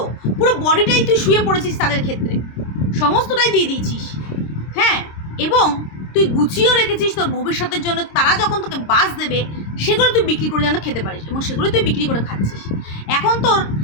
পুরো বডিটাই তুই শুয়ে পড়েছিস তাদের ক্ষেত্রে, সমস্তটাই দিয়ে দিয়েছিস। হ্যাঁ, এবং তুই গুছিয়েও রেখেছিস তোর ভবিষ্যতের জন্য। তারা যখন তোকে বাস দেবে, সেগুলো তুই বিক্রি করে যেন খেতে পারিস, এবং সেগুলো তুই বিক্রি করে খাচ্ছিস। এখন তোর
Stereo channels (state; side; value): late; right; 26 ms